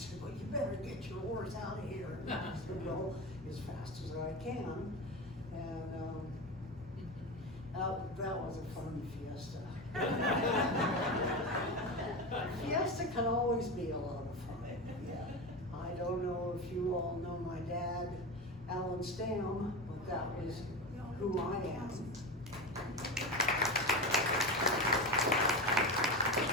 "Well, you better get your horse out of here." And I said, "Well, as fast as I can." And that was a fun fiesta. Fiesta can always be a lot of fun. I don't know if you all know my dad, Alan Stam, but that was who I am.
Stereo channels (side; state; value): both; normal; correlation 0.22